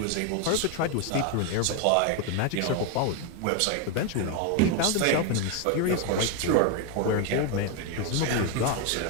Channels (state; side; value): different; both; correlation 0.01